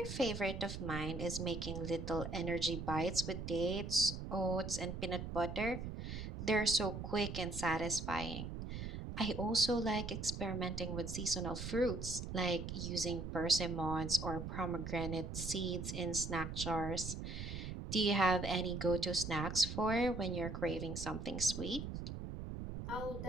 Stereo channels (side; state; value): right; noise; rumble, 6 dB below the sound